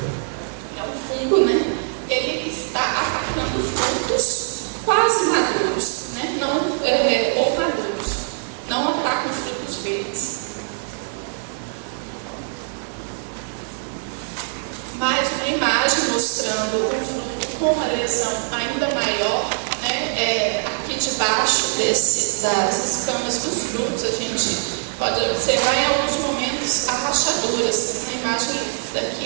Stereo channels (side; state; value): left; silent; 60 dB below the other